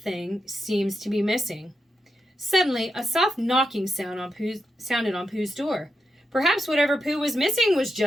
seems to be missing. Suddenly, a soft knocking sounded on Pooh's door. Perhaps whatever Pooh was missing was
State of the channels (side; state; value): both; normal; correlation 0.86